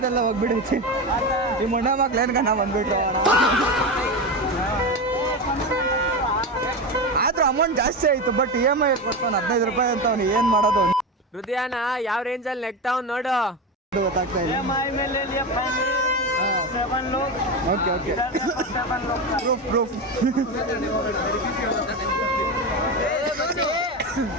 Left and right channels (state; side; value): normal; both; correlation 0.19